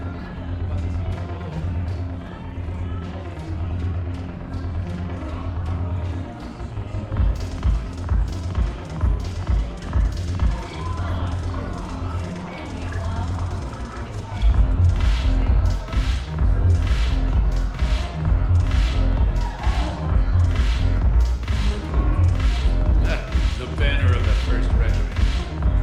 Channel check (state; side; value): identical; both; correlation 1.00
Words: The banner of the First